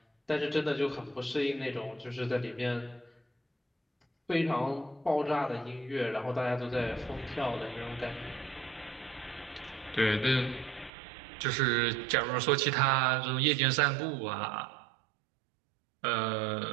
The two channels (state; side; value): drops out; left; at 10.9 s